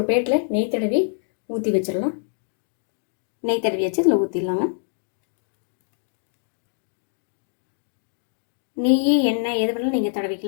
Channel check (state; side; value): silent; right; digital silence